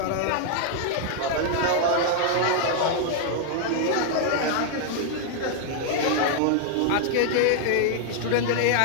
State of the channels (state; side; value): different; both; correlation 0.00